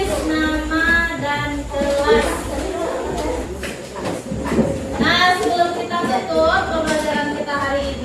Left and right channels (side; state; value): both; identical; correlation 1.00